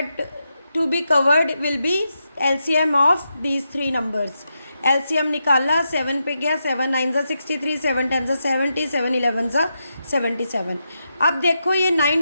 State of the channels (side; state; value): both; inverted; correlation -0.85